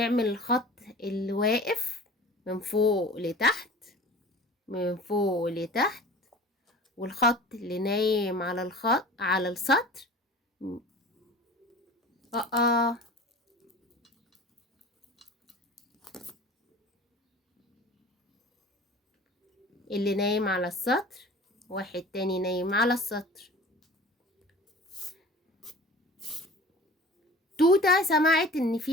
الخط اللي واقف من فوق لتحت من فوق لتحت، والخط اللي نايم على السطر. اللي نايم على السطر، واحد تاني نايم على السطر. توتة سمعت ان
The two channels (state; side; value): normal; both; correlation 0.41